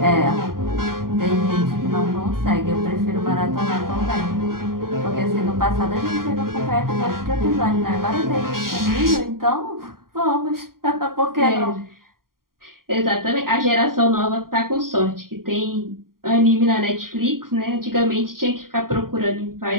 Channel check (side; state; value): left; late; 0.92 ms